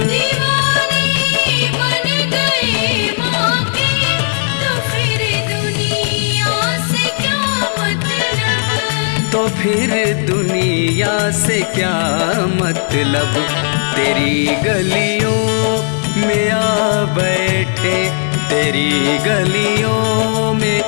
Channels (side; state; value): right; silent; digital silence